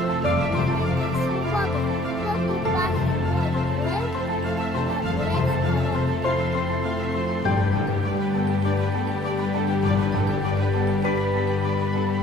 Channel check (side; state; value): both; normal; correlation 0.60